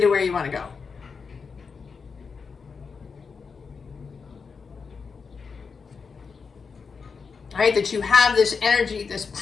where you want to go. Right? That you have this energy, this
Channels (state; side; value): quieter; right; 5.3 dB